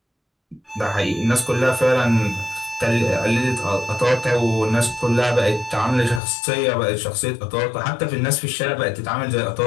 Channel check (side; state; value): right; drops out; at 6.2 s